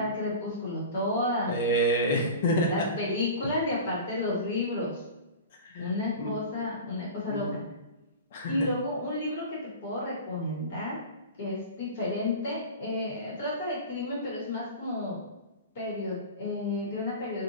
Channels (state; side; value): inverted; both; correlation -0.32